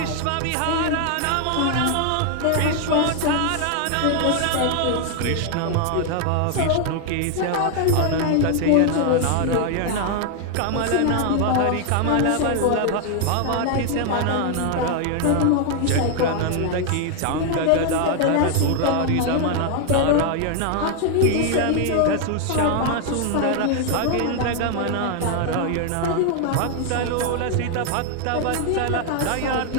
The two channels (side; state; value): both; different; correlation 0.00